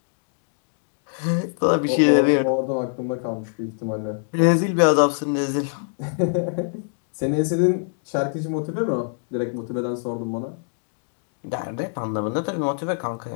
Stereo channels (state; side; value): silent; right; digital silence